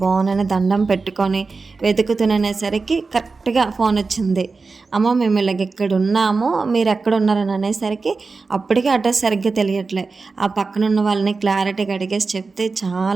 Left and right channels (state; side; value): quieter; left; 4.2 dB